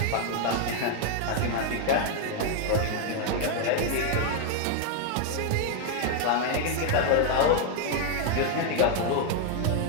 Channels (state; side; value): different; both; correlation 0.00